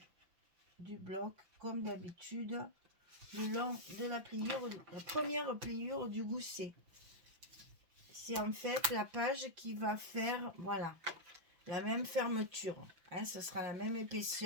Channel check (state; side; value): late; left; 6.0 ms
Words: du bloc, comme d'habitude, le long de la pliure, la première pliure du gousset. C'est en fait la page qui va faire, voilà, la même fermeture, hein, ce sera la même